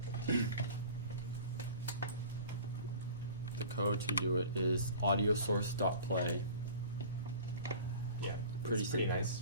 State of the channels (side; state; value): both; inverted; correlation -0.42